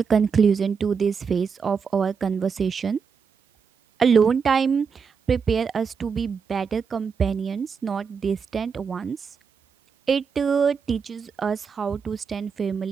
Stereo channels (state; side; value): quieter; left; 6.0 dB